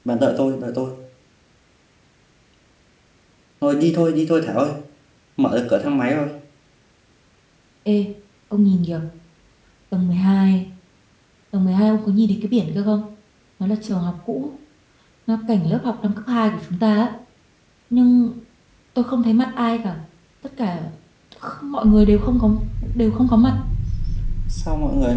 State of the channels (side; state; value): both; identical; correlation 1.00